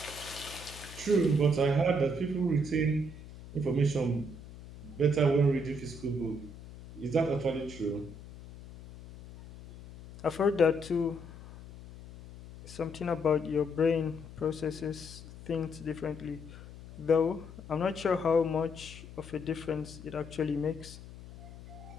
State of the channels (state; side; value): noise; left; hum, 15 dB below the sound